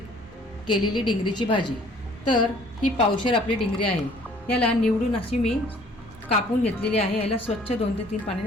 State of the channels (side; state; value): left; noise; rumble, 29 dB below the sound